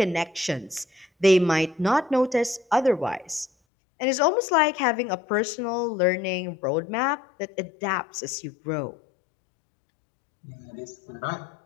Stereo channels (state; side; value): drops out; right; at 3.5 s